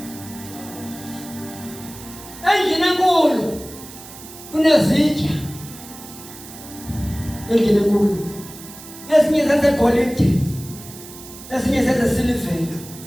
endlini enkulu kunezitya endlini enkulu ezinye zezegolide ezinye zezesilivela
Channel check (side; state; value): right; noise; hiss, 16 dB below the sound